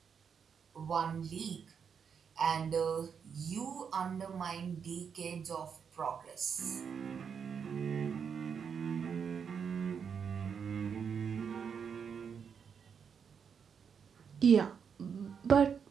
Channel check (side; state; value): left; quieter; 6.8 dB